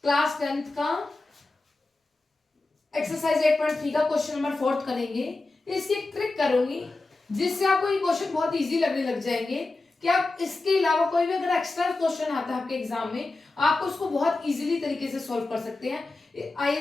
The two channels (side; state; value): right; quieter; 3.2 dB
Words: क्लास 10th का एक्सरसाइज 8.3 का क्वेश्चन नंबर 4 करेंगे। इसकी एक ट्रिक करूंगी जिससे आपको ये क्वेश्चन बहुत इजी लगने लग जाएंगे कि आप इसके अलावा कोई भी अगर एक्स्ट्रा क्वेश्चन आता है आपके एग्जाम में, आप उसको बहुत इजीली तरीके से सॉल्व कर सकते हैं।